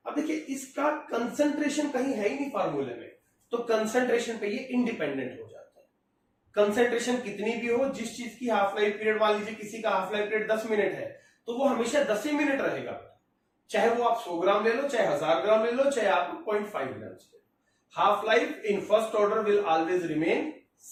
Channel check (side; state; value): both; identical; correlation 1.00